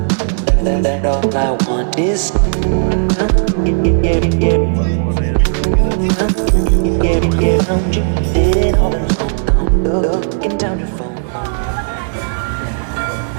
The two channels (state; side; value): silent; left; digital silence